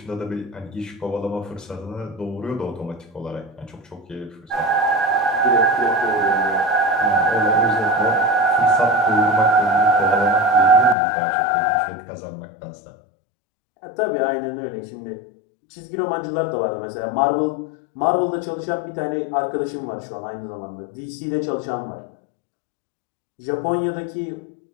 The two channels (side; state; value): right; drops out; at 11.0 s